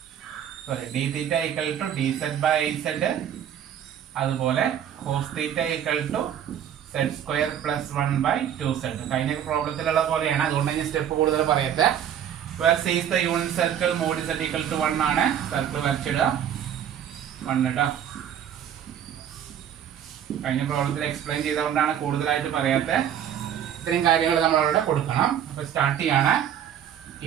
dθ = dz/iz. അതുപോലെ cos θ = z² + 1/2z. കഴിഞ്ഞ പ്രോബ്ലത്തിലുള്ള പോലെയാണ്, അതുകൊണ്ട് ഞാൻ സ്റ്റെപ്പ് കൂടുതൽ പറയട്ടെ. where c is the unit circle, mod z = 1 ആണ്. സർക്കിൾ വരച്ചിടുക 1 കേട്ടോ. കഴിഞ്ഞ പ്രോബ്ലത്തിൽ എക്സ്പ്ലെയിൻ ചെയ്തുകൊണ്ടാണ് കൂടുതലായിട്ട് പറയാത്തത്. ഇത്രയും കാര്യങ്ങൾ നമ്മളവിടെ കൊടുക്കണം. അപ്പോൾ സ്റ്റാർട്ട് ചെയ്യാണ്.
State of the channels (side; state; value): left; quieter; 9.6 dB